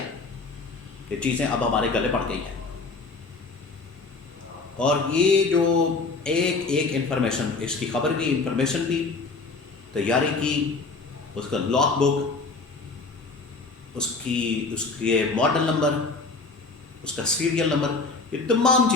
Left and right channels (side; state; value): right; quieter; 3.9 dB